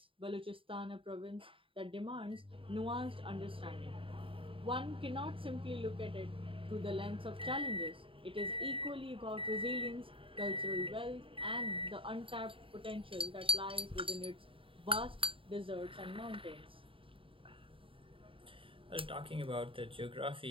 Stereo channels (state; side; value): late; left; 0.26 ms